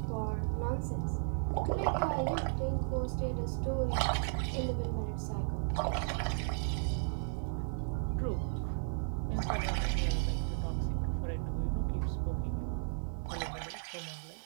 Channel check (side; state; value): left; silent; digital silence